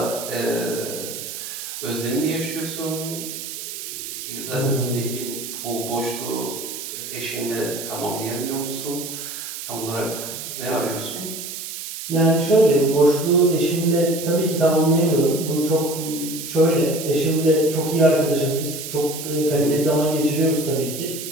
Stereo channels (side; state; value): right; noise; hiss, 8 dB below the sound